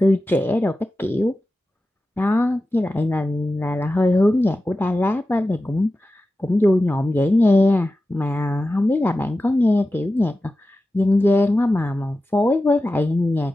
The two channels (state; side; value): normal; both; correlation 0.94